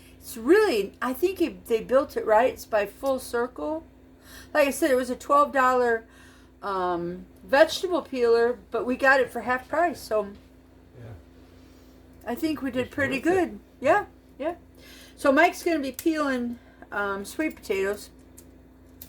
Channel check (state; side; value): identical; both; correlation 1.00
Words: It's really, I think they built it right. It's by Full Circle. Like I said, it was a $12 vegetable peeler, but we got it for half price. So I think we did pretty good. Yeah, yeah. So Mike's going to be peeling sweet potatoes.